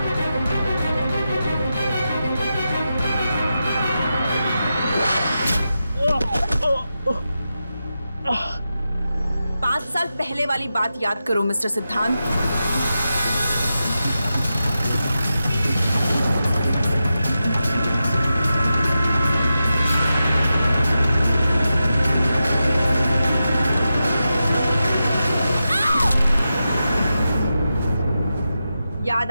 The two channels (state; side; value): inverted; both; correlation -0.90